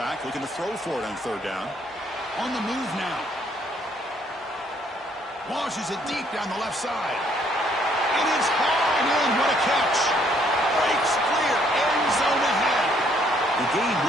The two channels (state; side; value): normal; both; correlation 0.66